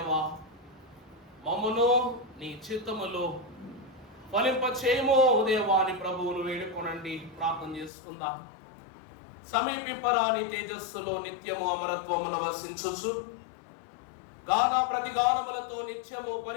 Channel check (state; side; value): drops out; right; at 7.9 s